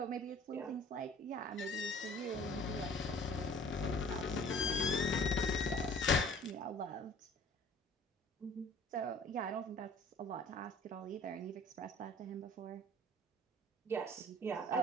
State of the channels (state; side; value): normal; both; correlation 0.49